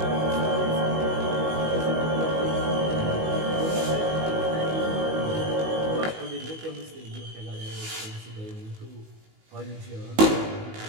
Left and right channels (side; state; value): left; late; 19 ms